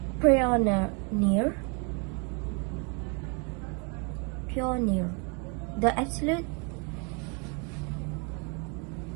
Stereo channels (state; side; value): quieter; left; 33.8 dB